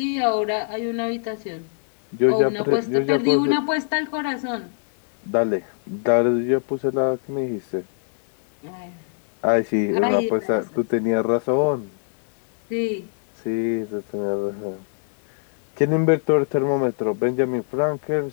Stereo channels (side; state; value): right; silent; digital silence